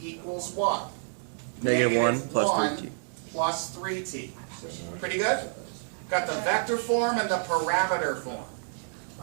what? -1 plus 1 3t. plus 3t. Pretty good? Got the vector form and the parameter form.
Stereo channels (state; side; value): silent; left; digital silence